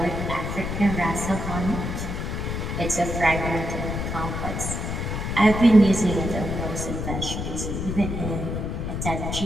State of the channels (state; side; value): noise; left; rumble, 3 dB below the sound